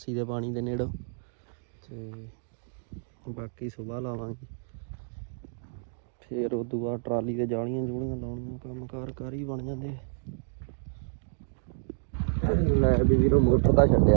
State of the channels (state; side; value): silent; left; digital silence